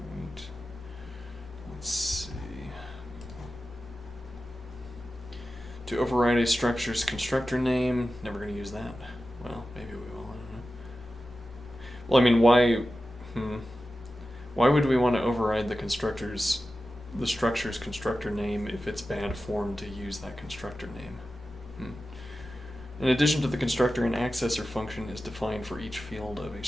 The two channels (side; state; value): both; normal; correlation 0.93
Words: Alright. Let's see. To override a structure's constructor name, never going to use that. Well, maybe we will, I don't know. Well, I mean, why would we want to override the structure's constructor name if it's bad form to use that constructor name? In addition to the constructor, an accessor function is defined for each field of a